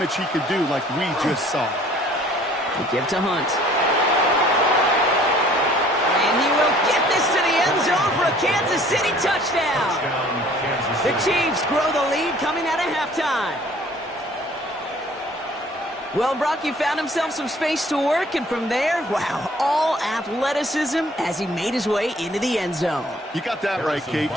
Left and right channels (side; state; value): both; normal; correlation 0.55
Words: he could do like we just saw. They give to Hunt. And he will get this to the end zone for a Kansas City touchdown. The Chiefs grow the lead coming out of halftime. Well, Brock, he found himself some space to work, and from there, wow, all athleticism as he made his way into the end zone. You got that right, Kate.